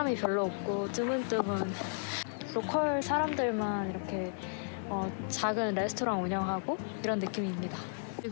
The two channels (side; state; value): right; silent; digital silence